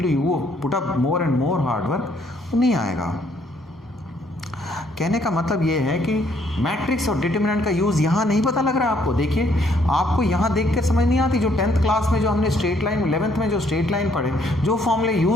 you put up more and more hard work, वो नहीं आएगा। कहने का मतलब ये है कि मैट्रिक्स और डिटर्मिनेंट का यूज़ यहाँ नहीं पता लग रहा है आपको। देखिए, आपको यहाँ देख कर समझ नहीं आती, जो 10th क्लास में जो हमने स्ट्रेट लाइन, 11th में जो स्ट्रेट लाइन पढ़े, जो फॉर्मूले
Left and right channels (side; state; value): both; normal; correlation 0.67